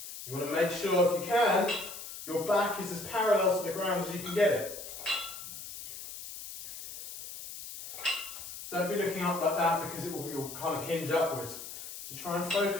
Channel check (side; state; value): left; noise; hiss, 11 dB below the sound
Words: You want to make sure, if you can, your back is as parallel to the ground as you can get it. Don't be looking up like that because you'll kind of hinge upwards. So try and